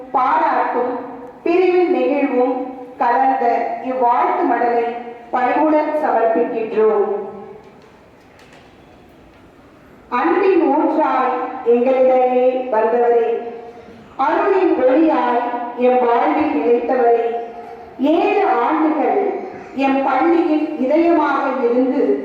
பாராட்டும் பிரிவின் நெகிழ்வும் கலந்த இவ்வாழ்த்து மடலை பணிவுடன் சமர்ப்பிக்கின்றோம். அன்பின் ஊற்றாய் எங்களிடையே வந்தவரே, அருளின் ஒளியாய் எம் வாழ்வில் நிலைத்தவரே, 7 ஆண்டுகள் எம் பள்ளியின் இதயமாக இருந்து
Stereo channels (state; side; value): identical; both; correlation 1.00